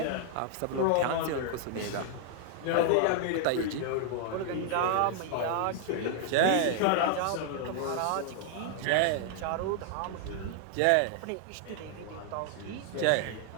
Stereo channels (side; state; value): both; different; correlation 0.00